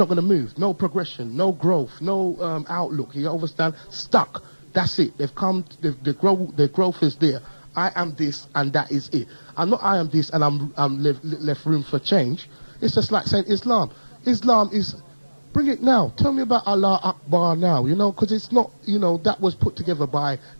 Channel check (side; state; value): both; inverted; correlation -1.00